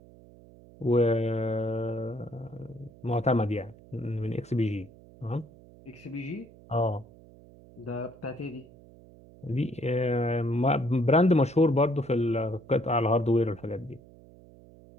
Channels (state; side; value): noise; right; hum, 23 dB below the sound